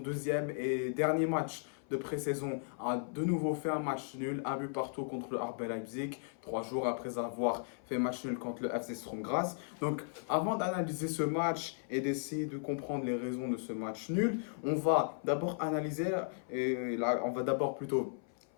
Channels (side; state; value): right; silent; 54 dB below the other